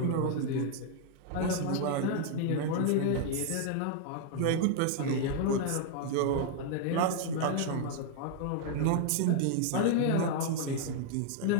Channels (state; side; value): different; both; correlation 0.00